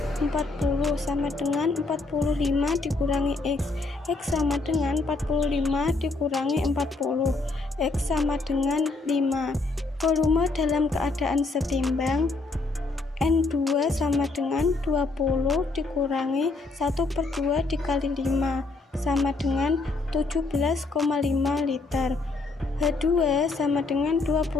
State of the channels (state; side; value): quieter; right; 3.5 dB